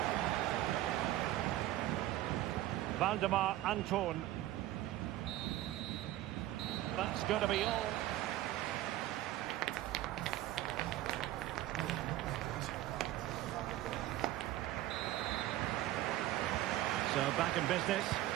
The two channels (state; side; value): quieter; left; 14.9 dB